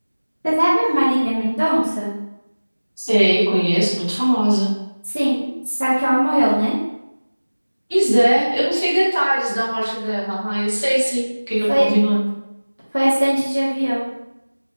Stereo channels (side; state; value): both; inverted; correlation -1.00